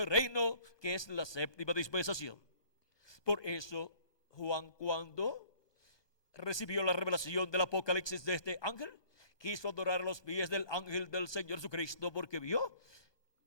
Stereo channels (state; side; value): late; right; 1.2 ms